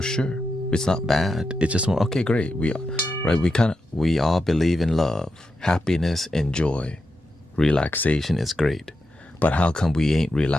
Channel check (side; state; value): both; normal; correlation 0.87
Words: sure. It's not bad. It's just more, okay, great. We all believe in love, happiness, and joy. Relaxation is great. But how come we ain't